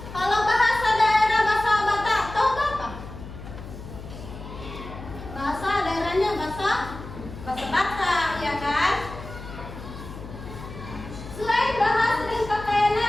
Kalau bahasa daerah bahasa Batak, tahu apa? Bahasa daerahnya bahasa Batak, ya kan? Selain bahasa dan pakaian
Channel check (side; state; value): left; noise; hum, 12 dB below the sound